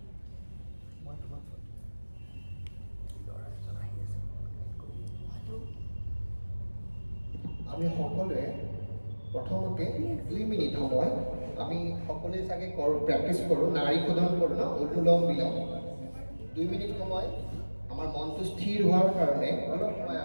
আমি সকলোৱে প্ৰথমতে 2 মিনিট সময় আমি সকলোৱে চাগে প্ৰেক্টিছ কৰোঁ, নাড়ী শোধন কৰোঁ ন, অনুলোম বিলোম। 2 মিনিট সময় আমাৰ মনটো স্থিৰ হোৱাৰ কাৰণে অলপ সময়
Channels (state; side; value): inverted; both; correlation -1.00